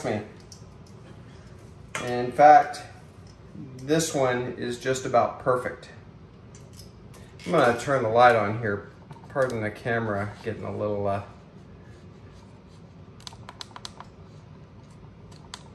me. And in fact, this one is just about perfect. I'm gonna turn the light on here. Pardon the camera getting a little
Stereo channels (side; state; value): both; identical; correlation 1.00